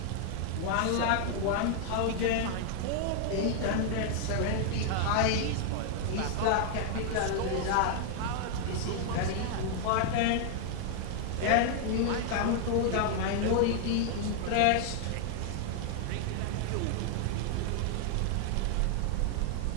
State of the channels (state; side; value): different; both; correlation 0.00